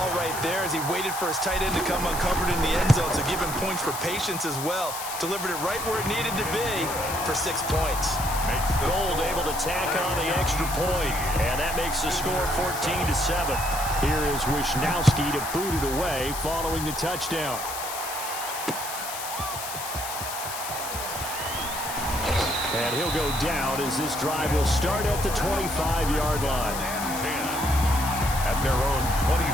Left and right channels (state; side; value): noise; left; hiss, 7 dB below the sound